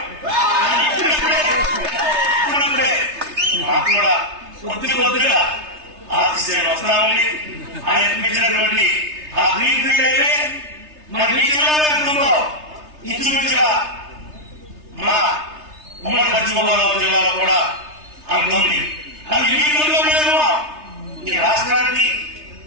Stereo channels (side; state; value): left; late; 3.3 ms